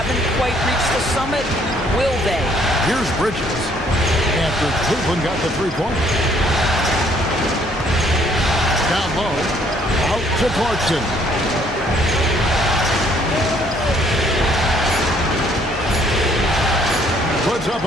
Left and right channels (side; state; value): both; normal; correlation 0.63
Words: quite reached the summit, will they? Here's Bridges, after Cleveland got the 3-point. Down low, out to Clarkson. Puts up